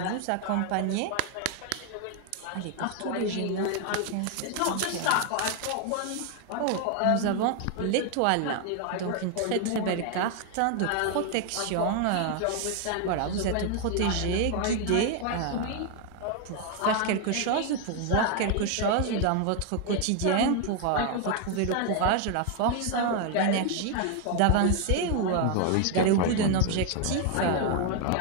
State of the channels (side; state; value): both; different; correlation 0.01